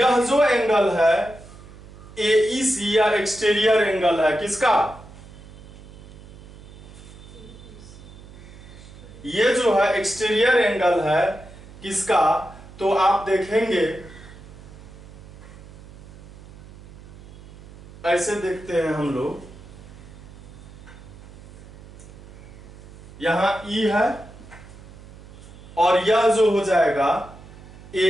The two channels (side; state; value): right; noise; hum, 18 dB below the sound